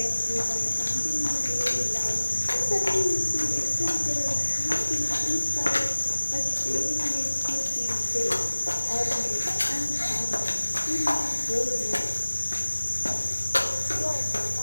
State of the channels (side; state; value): both; inverted; correlation -1.00